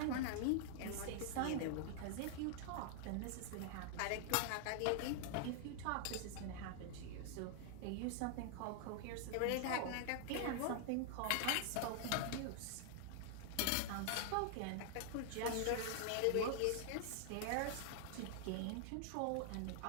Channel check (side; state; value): both; different; correlation 0.00